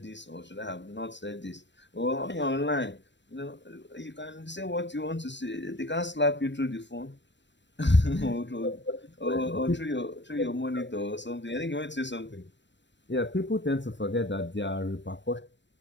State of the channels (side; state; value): right; late; 0.53 ms